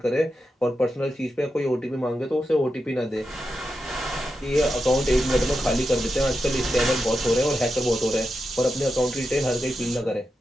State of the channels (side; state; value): both; normal; correlation 0.88